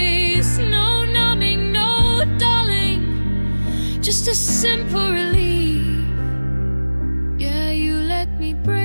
No numbing, no dulling, just a simple relief. Yeah, you let me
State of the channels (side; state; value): both; inverted; correlation -1.00